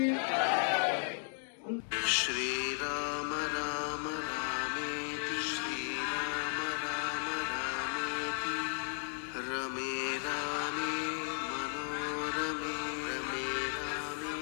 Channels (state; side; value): silent; right; 54 dB below the other